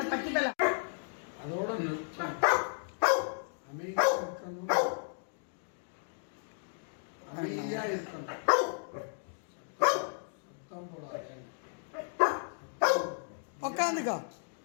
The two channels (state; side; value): silent; right; digital silence